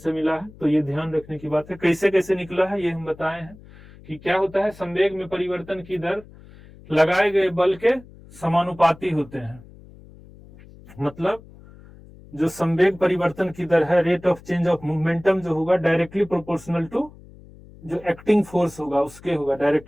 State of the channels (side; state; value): left; noise; hum, 21 dB below the sound